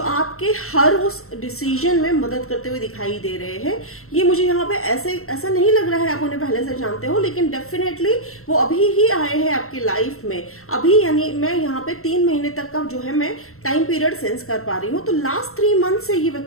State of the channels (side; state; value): right; late; 0.63 ms